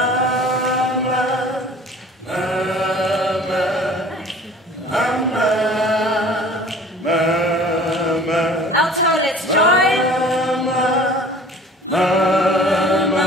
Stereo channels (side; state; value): both; normal; correlation 0.47